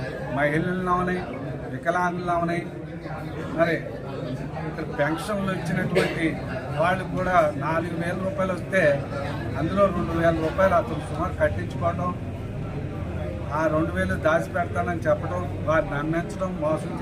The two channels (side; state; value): both; identical; correlation 1.00